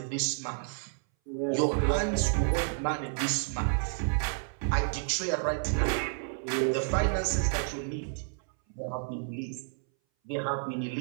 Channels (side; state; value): left; silent; 58 dB below the other